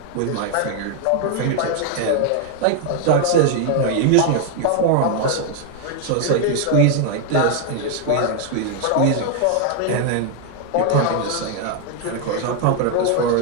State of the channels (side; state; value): both; different; correlation 0.00